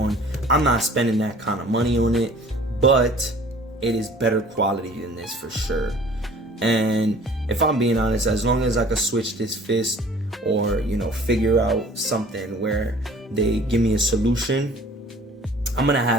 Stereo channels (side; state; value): both; normal; correlation 0.49